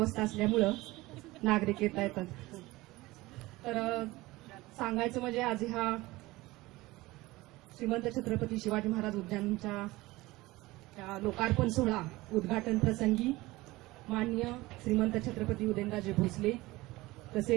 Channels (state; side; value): quieter; left; 19.8 dB